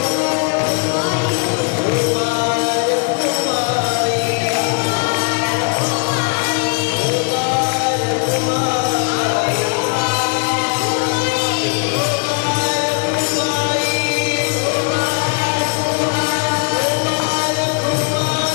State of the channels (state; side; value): quieter; right; 37.9 dB